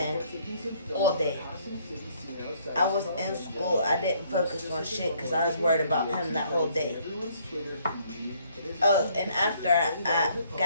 all day. I was in school. I didn't focus on shit because I was worried about him that whole day. Oh, and after I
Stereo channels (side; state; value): both; inverted; correlation -0.64